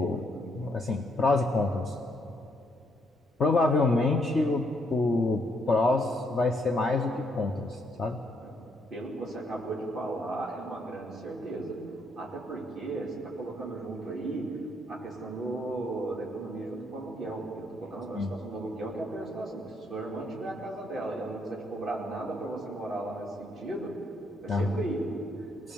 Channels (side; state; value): both; normal; correlation 0.73